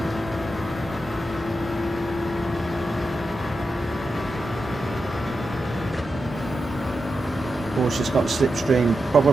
Porsche's got a slipstream,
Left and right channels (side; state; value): both; normal; correlation 0.89